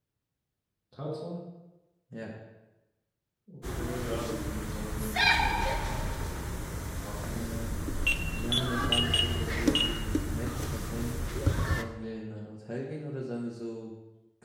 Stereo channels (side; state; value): both; identical; correlation 1.00